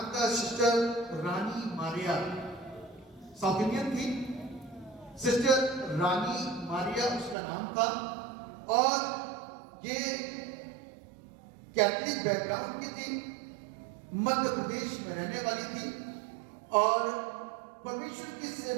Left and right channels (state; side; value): drops out; left; at 7.4 s